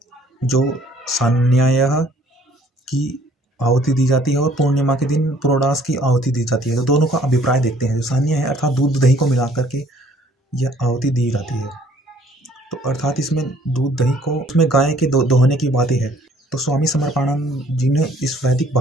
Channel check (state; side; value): normal; both; correlation 0.59